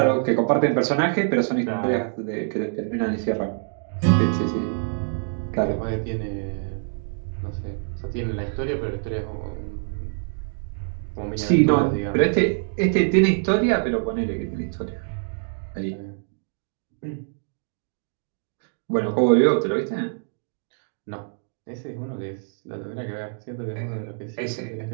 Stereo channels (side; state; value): left; silent; digital silence